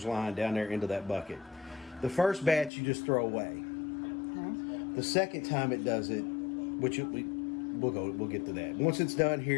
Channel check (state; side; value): drops out; right; at 2.7 s